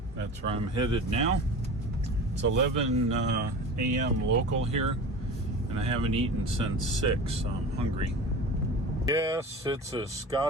that's where I'm headed now. It's 11 a.m. local here, and I haven't eaten since 6, so I'm hungry. Yes, it's a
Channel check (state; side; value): normal; both; correlation 0.34